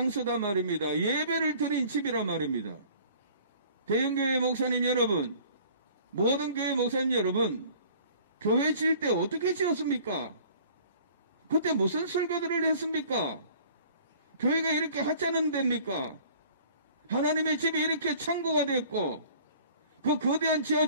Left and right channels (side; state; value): both; inverted; correlation -0.51